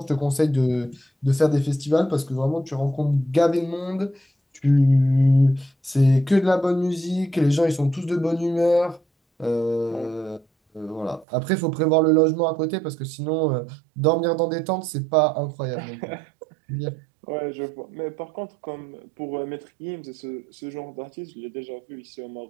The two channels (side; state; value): left; drops out; at 11.2 s